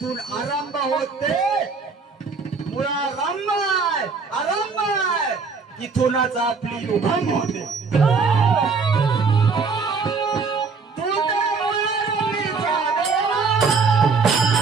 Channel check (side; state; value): left; quieter; 4.8 dB